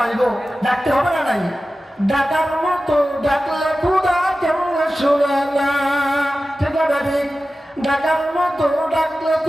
ডাকতে হবে না নাই? ডাকার মতো ডাকলে খোদা কেমন শুনে না, ঠিক আছে ঠিক? ডাকার মতো ডাকলে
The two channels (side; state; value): both; normal; correlation 0.95